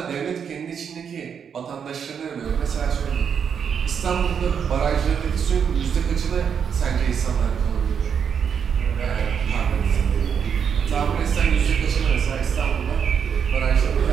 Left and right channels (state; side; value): quieter; left; 7.3 dB